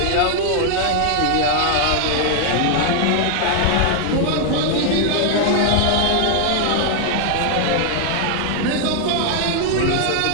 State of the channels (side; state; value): both; different; correlation 0.00